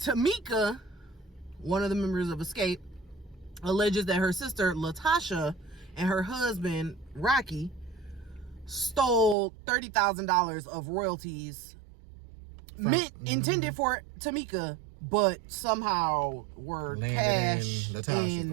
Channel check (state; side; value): drops out; left; at 9.3 s